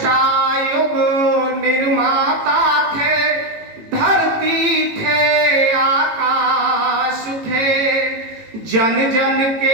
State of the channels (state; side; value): late; left; 18 ms